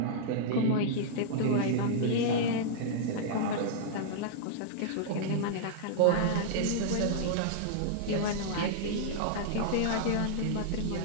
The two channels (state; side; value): different; both; correlation -0.02